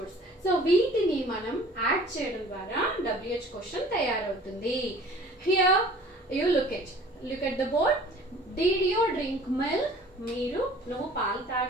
సో వీటిని మనం యాడ్ చేయడం ద్వారా WH క్వశ్చన్ తయారవుతుంది. Here you look at the board. Did you drink milk? నువ్వు పాలు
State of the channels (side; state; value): both; normal; correlation 0.49